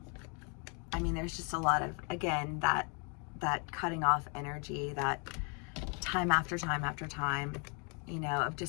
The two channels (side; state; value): right; quieter; 36.2 dB